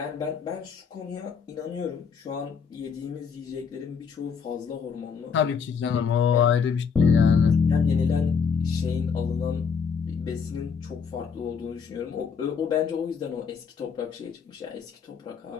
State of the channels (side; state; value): right; quieter; 6.2 dB